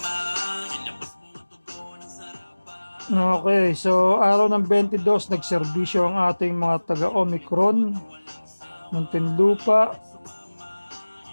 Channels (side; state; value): both; inverted; correlation -1.00